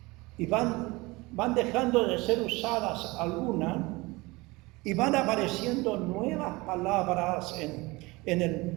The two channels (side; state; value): left; quieter; 22.9 dB